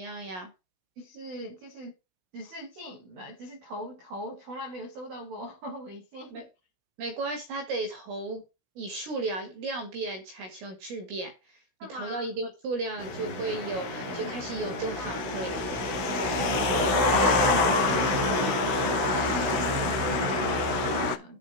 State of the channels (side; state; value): left; late; 16 ms